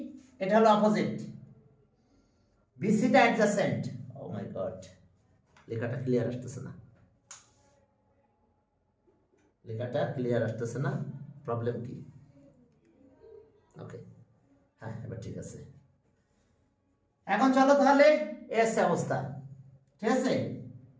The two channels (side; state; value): both; identical; correlation 1.00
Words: এটা হলো অপোজিট, বিসিটা অ্যাডজাসেন্ট। ও মাই গড, লেখাটা ক্লিয়ার আসতেছে না, লেখাটা ক্লিয়ার আসতেছে না, প্রবলেম কি? ওকে, হ্যাঁ এবার ঠিক আছে। এখন চলো তাহলে এস অবস্থা, ঠিক আছে।